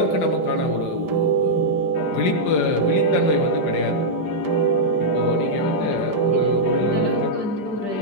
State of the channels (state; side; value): late; right; 5.0 ms